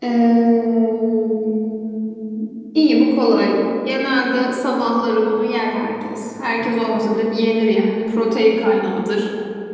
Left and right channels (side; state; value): both; identical; correlation 1.00